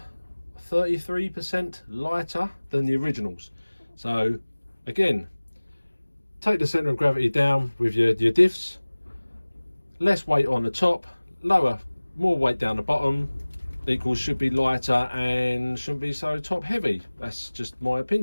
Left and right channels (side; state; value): both; inverted; correlation -1.00